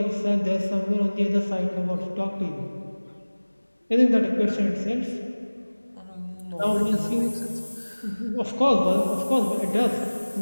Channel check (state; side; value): inverted; both; correlation -1.00